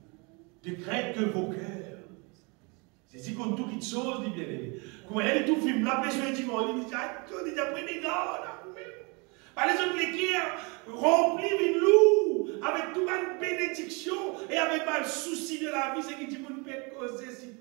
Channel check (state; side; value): quieter; left; 30.3 dB